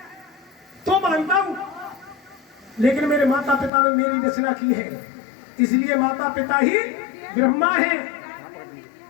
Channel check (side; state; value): right; drops out; at 3.7 s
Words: तो मानता हूं, लेकिन मेरे माता पिता ने मेरी रचना की है, इसलिए माता पिता ही ब्रह्मा है।